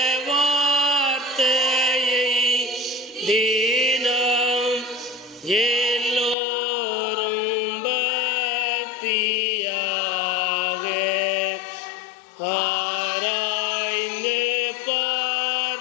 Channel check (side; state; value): right; drops out; at 6.4 s